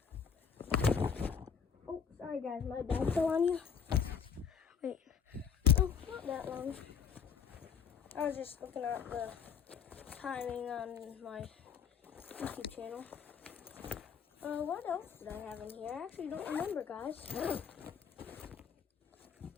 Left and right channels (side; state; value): right; quieter; 6.8 dB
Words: Oh, sorry guys, my bag fell on you. Wait, oh, not that long. I was just looking at the timing on my YouTube channel. What else did I have in here? I actually don't remember, guys.